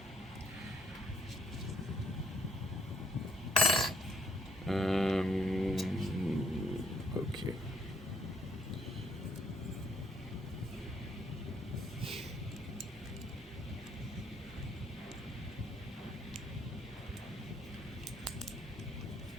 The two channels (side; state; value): both; normal; correlation 0.67